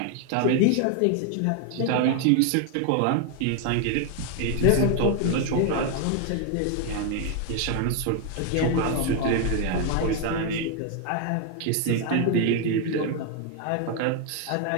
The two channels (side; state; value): both; different; correlation 0.01